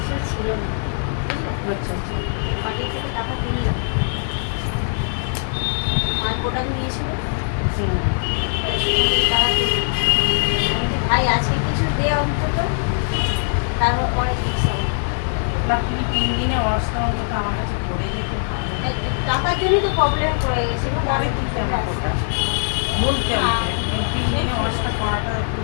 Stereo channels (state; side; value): silent; right; 65 dB below the other